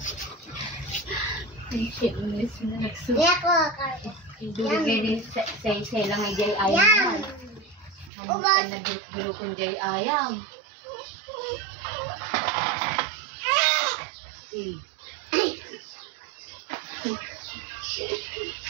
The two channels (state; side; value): drops out; left; at 8.1 s